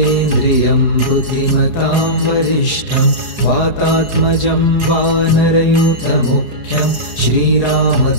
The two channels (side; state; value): left; late; 4.8 ms